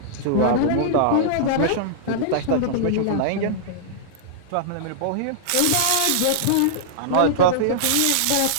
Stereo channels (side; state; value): both; different; correlation -0.02